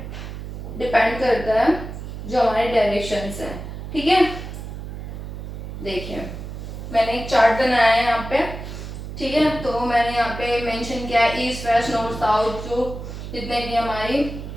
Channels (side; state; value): right; noise; hum, 9 dB below the sound